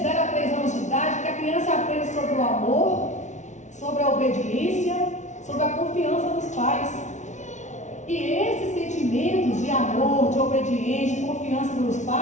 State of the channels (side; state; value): right; late; 0.35 ms